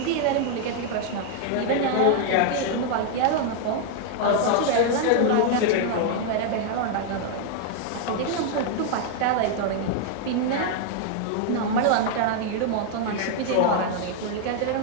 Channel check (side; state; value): both; different; correlation 0.00